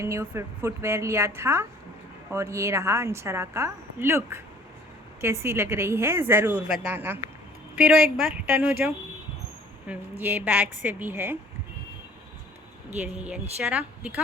न्यू फुटवेयर लिया था और ये रहा अंशरा का लुक। कैसी लग रही है ज़रूर बताना। फिर एक बार टर्न हो जाओ। ये बैग से भी है। ये रही अंशरा,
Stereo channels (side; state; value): both; normal; correlation 0.53